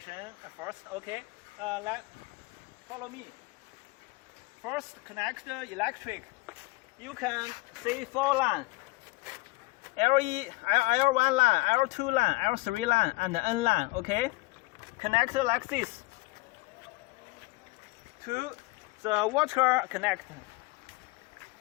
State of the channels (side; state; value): right; quieter; 23.4 dB